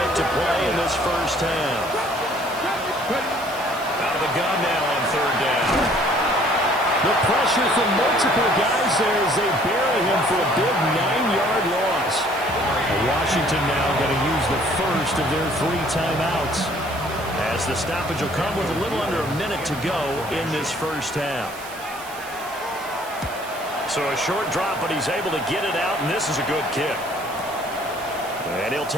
to play in this first half. Out of the gun now on 3rd down. The pressure from multiple guys there as they bury him for a big 9-yard loss. Washington now going to use the first of their 3 timeouts, as the stoppage will come with a little under a minute to go in this first half. So a short drop, but he's able to get it out, and this is a good kick. And he'll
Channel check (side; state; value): right; noise; hiss, 16 dB below the sound